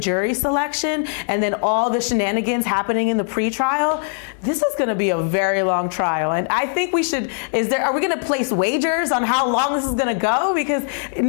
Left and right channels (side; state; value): right; silent; 60 dB below the other